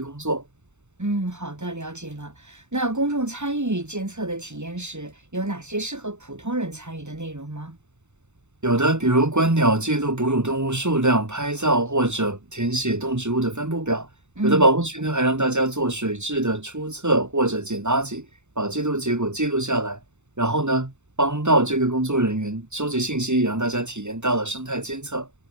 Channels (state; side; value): late; left; 0.83 ms